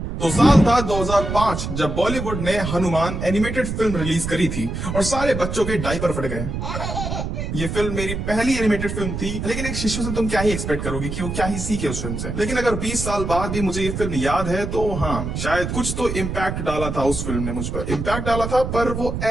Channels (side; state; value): right; noise; rumble, 4 dB below the sound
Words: तो साल था 2005 जब बॉलीवुड ने हनुमान एनिमेटेड फिल्म रिलीज करी थी और सारे बच्चों के डायपर फट गए। ये फिल्म मेरी पहली एनिमेटेड फिल्म थी, लेकिन एक शिशु से तुम क्या ही एक्सपेक्ट करोगे कि वो क्या ही सीखे उस फिल्म से। लेकिन अगर 20 साल बाद भी मुझे ये फिल्म याद है तो हाँ, शायद कुछ तो इम्पैक्ट डाला था उस फिल्म ने मुझ पर। इम्पैक्ट डाला था, पर वो